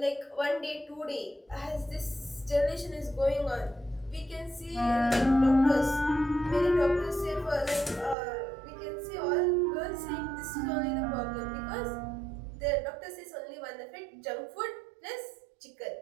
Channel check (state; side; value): drops out; left; at 8.2 s